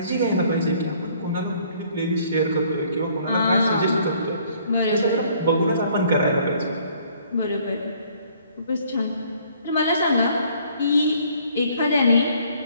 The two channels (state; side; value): inverted; both; correlation -0.60